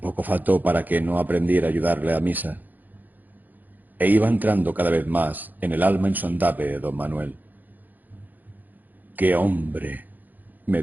faltó para que no aprendiera a ayudarle a misa. E iba entrando cada vez más en el alma insondable de don Manuel. ¡Qué hombre!, me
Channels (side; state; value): left; late; 0.084 ms